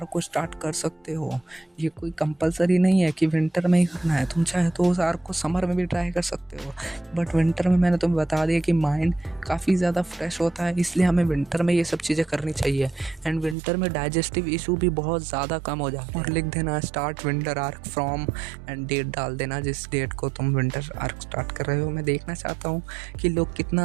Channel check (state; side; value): drops out; left; at 13.6 s